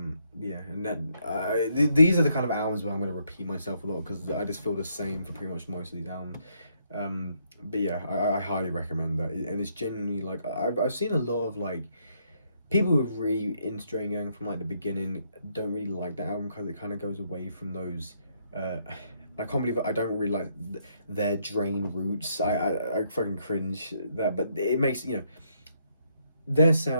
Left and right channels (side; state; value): both; inverted; correlation -0.74